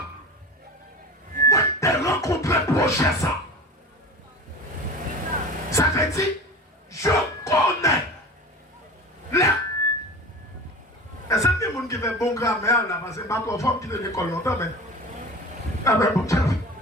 Moi, je rencontré projet ça. Ça veut dire, je connais les. Et c'est des gens qui font bon grammaire là, parce que ma femme qui est de l'école longtemps, mais. Ah ben bon,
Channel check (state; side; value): normal; both; correlation 0.34